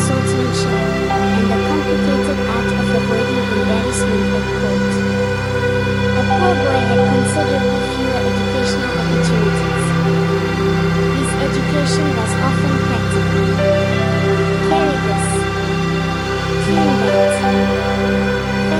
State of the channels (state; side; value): identical; both; correlation 1.00